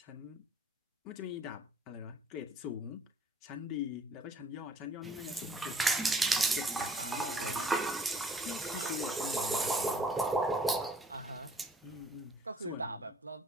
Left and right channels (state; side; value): normal; both; correlation 0.59